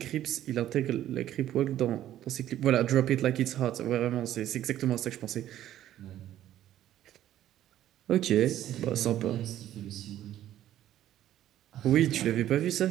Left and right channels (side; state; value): left; quieter; 12.4 dB